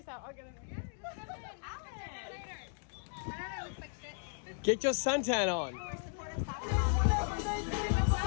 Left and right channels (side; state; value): right; silent; 54 dB below the other